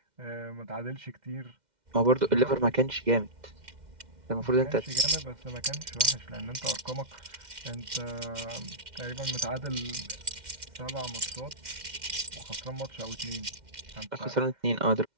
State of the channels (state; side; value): late; left; 2.1 ms